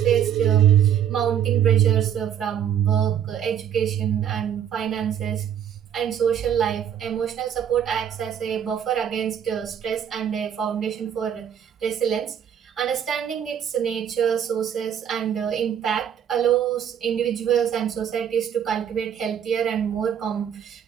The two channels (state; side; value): quieter; left; 9.1 dB